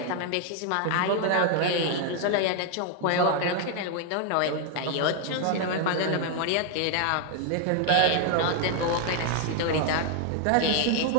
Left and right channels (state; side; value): different; both; correlation 0.00